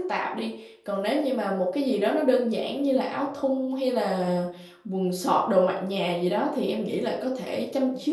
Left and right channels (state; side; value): identical; both; correlation 1.00